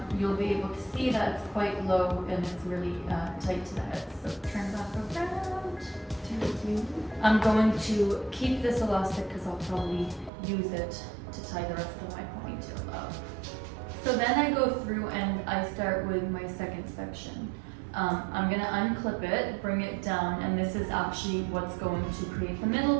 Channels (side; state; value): left; drops out; at 10.3 s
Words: you'll be able to see that it's quite low and it's really tight to the head. So turn back around. I'm going to keep this elastic because I'll probably use it to tie the rest of my ponytail up. So then I go through and I start with my second section. I'm going to unclip it, bring it down, and this is actually what's going to create the